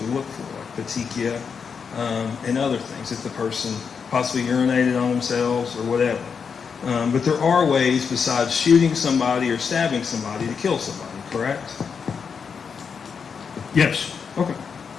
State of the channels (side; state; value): right; quieter; 6.1 dB